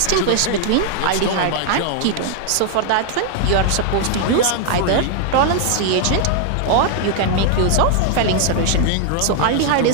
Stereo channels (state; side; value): different; both; correlation 0.00